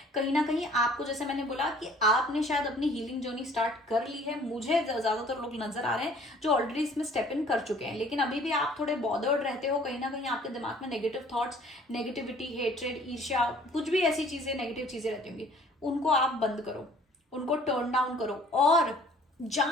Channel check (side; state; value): both; normal; correlation 0.54